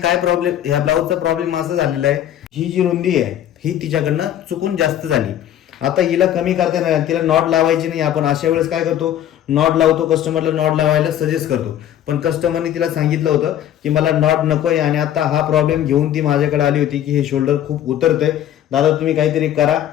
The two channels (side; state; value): right; quieter; 11.2 dB